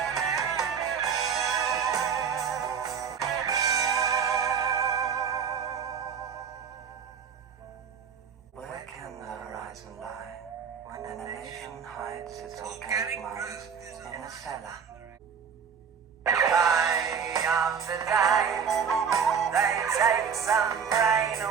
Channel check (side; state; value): left; quieter; 6.9 dB